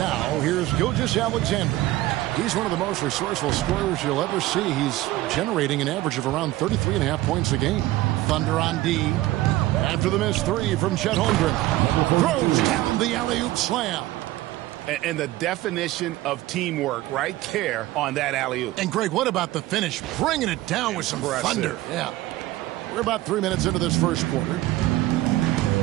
here's Gilgeous-Alexander. He's one of the most resourceful scorers you'll ever see. He's generating an average of around 33.5 points a game. Thunder on D. After the missed 3 from Chet Holmgren. Throws down the alley-oop slam. And the definition of teamwork right there on that alley-oop. And, Greg, what about the finish? Bringing it down with some thunder. Yeah. We're about 3 minutes into this first quarter.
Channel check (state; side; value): quieter; left; 16.8 dB